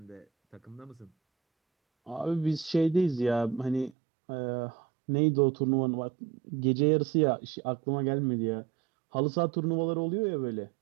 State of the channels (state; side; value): drops out; left; at 3.9 s